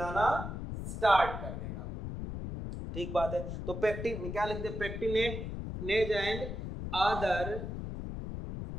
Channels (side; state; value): left; noise; rumble, 6 dB below the sound